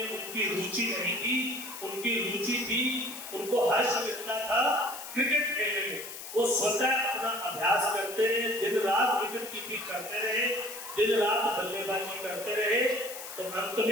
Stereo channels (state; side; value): noise; left; hiss, 11 dB below the sound